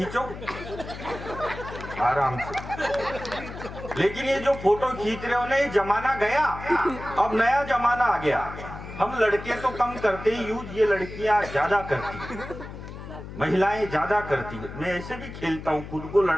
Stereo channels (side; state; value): left; noise; hum, 11 dB below the sound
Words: आराम से। लेकिन ये जो फोटो खींच रहे हो ना, ये जमाना गया, अब नया जमाना आ गया। हम लड़के तो कम करते ही यूज, ये लड़कियां ज्यादा करती, महिलाएं ज्यादा करती है। मैं ऐसे भी खेलता हूँ, खुद को